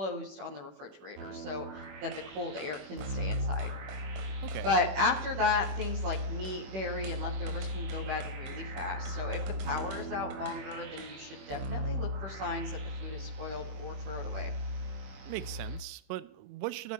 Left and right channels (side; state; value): left; late; 21 ms